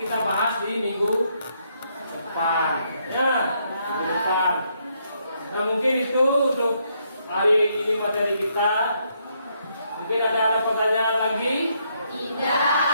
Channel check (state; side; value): inverted; both; correlation -0.74